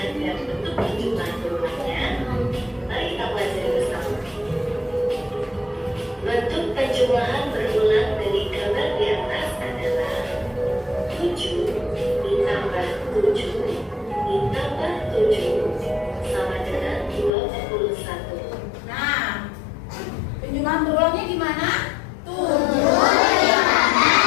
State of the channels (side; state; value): right; drops out; at 17.3 s